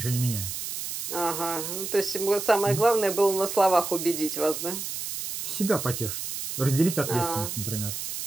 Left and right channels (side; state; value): right; noise; hiss, 5 dB below the sound